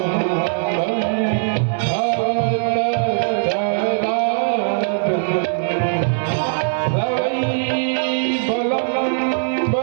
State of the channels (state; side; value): silent; left; digital silence